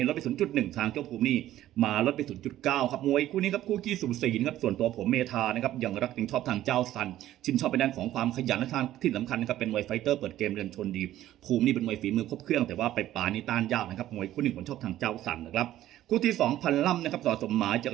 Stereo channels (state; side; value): quieter; left; 13.5 dB